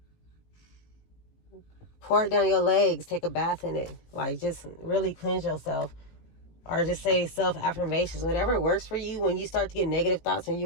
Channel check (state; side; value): late; right; 18 ms